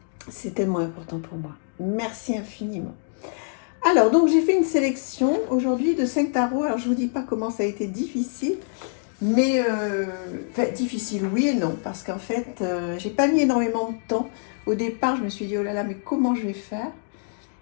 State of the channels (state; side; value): silent; right; digital silence